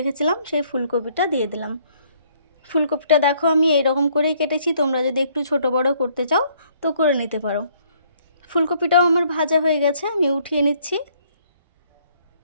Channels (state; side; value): inverted; both; correlation -0.65